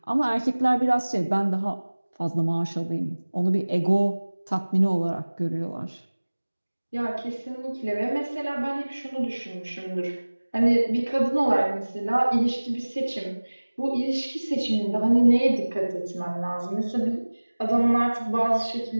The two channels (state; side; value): inverted; both; correlation -1.00